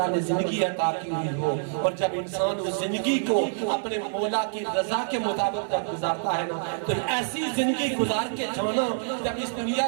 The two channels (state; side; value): silent; left; 60 dB below the other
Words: نے زندگی عطا کی ہوئی ہو، اور جب انسان اس زندگی کو اپنے مولا کی رضا کے مطابق جب گزارتا ہے نا، تو ایسی زندگی گزار کے جانا، جب اس دنیا